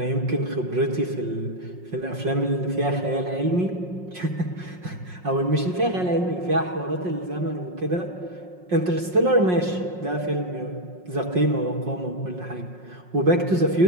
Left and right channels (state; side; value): late; left; 5.5 ms